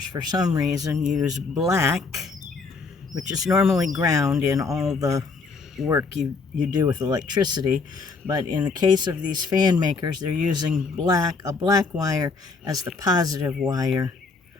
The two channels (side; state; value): right; quieter; 4.5 dB